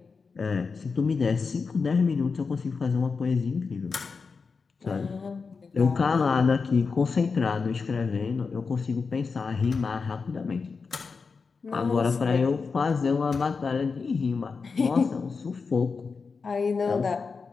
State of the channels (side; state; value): right; quieter; 4.9 dB